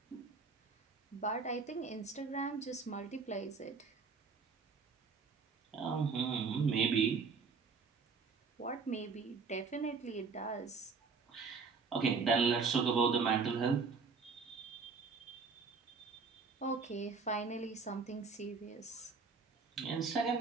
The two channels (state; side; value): quieter; left; 4.9 dB